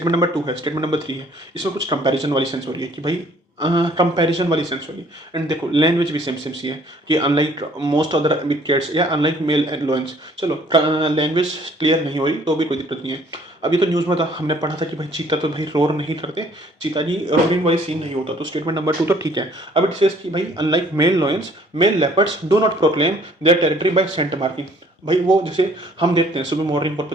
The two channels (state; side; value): normal; both; correlation 0.58